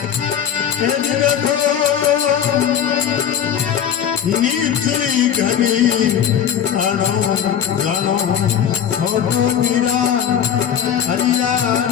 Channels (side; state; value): right; quieter; 9.0 dB